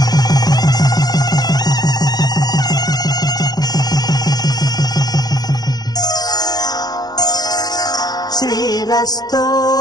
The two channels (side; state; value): right; late; 0.19 ms